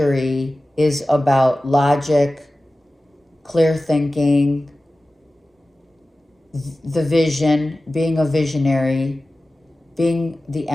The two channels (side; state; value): both; normal; correlation 0.96